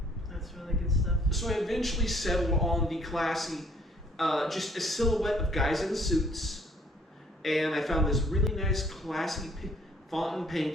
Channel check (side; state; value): both; normal; correlation 0.61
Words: That's really good stuff. So I eventually settled on the classy, just a silhouette of guys in suits. And I found this really nice, classy font in